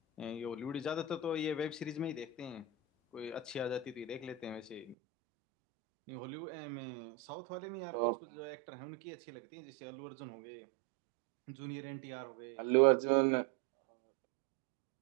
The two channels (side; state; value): left; drops out; at 5.0 s